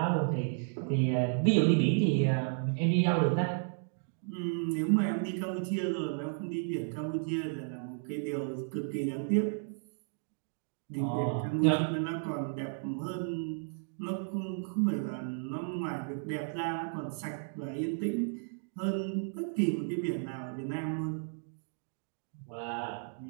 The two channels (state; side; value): silent; left; digital silence